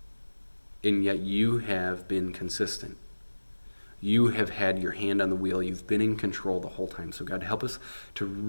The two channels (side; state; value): both; inverted; correlation -1.00